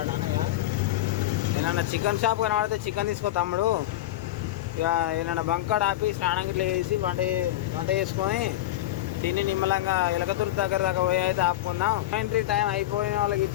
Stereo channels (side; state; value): right; quieter; 14.9 dB